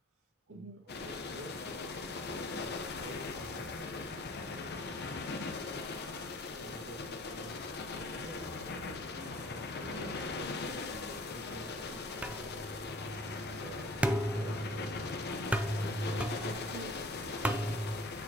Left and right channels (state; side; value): normal; both; correlation 0.52